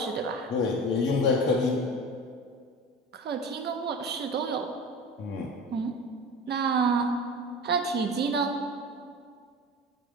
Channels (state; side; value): normal; both; correlation 0.33